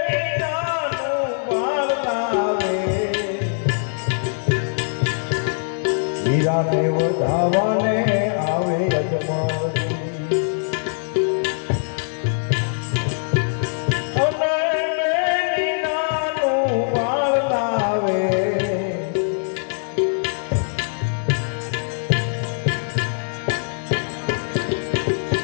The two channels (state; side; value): silent; right; digital silence